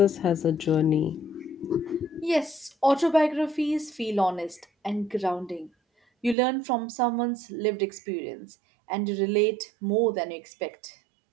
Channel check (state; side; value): drops out; left; at 6.4 s